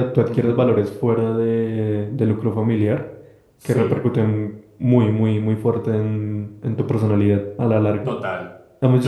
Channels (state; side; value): identical; both; correlation 1.00